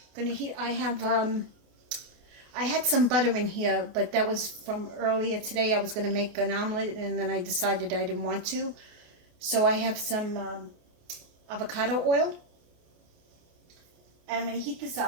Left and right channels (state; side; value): late; left; 29 ms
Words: I had some butter in here, but that was from earlier today. I was going to make an omelet, and then I decided I didn't want to. So I have some avocado oil. And I'm going to heat this